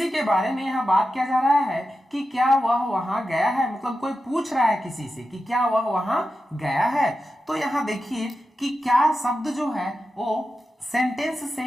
के बारे में यहाँ बात किया जा रहा है कि क्या वह वहां गया है, मतलब कोई पूछ रहा है किसी से कि क्या वह वहां गया है। तो यहाँ देखिए कि क्या शब्द जो है वो सेंटेंस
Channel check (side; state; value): both; normal; correlation 0.91